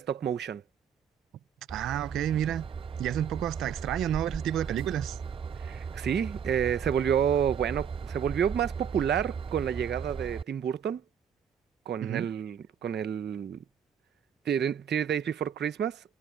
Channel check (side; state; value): left; quieter; 8.3 dB